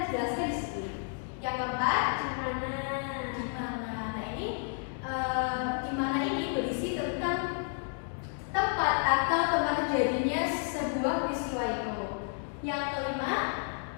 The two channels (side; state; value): right; silent; 57 dB below the other